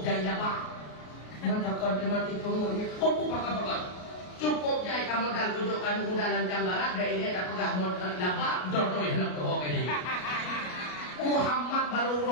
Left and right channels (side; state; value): right; late; 33 ms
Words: jaya bang. Maka mati pengurnya. Kau pakai. Cukup jaya kamu dah tunjukkan modalan janggaran. Dan ini dah pegah modal nabak. Dodoi nak kau ini. Muhammad baru